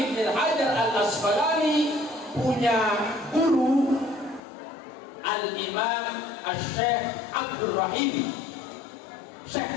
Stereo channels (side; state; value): right; drops out; at 4.4 s